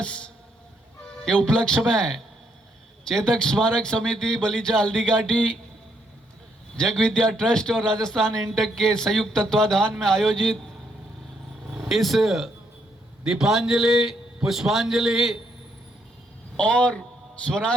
के उपलक्ष्य में चेतक स्मारक समिति बलीचा हल्दी घाटी, जगविद्या ट्रस्ट और राजस्थान इंटक के संयुक्त तत्वाधान में आयोजित इस दीपांजलि, पुष्पांजलि और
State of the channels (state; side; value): normal; both; correlation 0.74